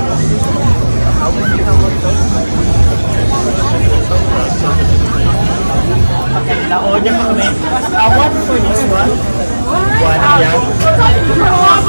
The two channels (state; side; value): inverted; both; correlation -1.00